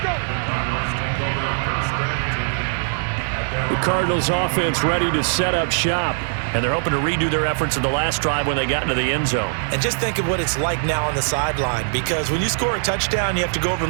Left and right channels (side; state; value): left; silent; 55 dB below the other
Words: The Cardinals offense ready to set up shop. And they're hoping to redo their efforts in the last drive when they got into the end zone. And just think of what it's like now on the sideline, because when you score a touchdown, you have to go over